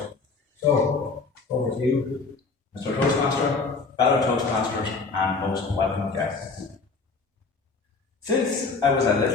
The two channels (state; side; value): quieter; right; 4.3 dB